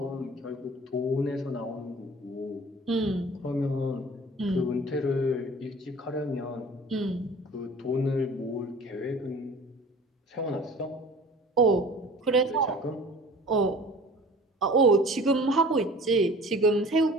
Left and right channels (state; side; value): normal; both; correlation 0.45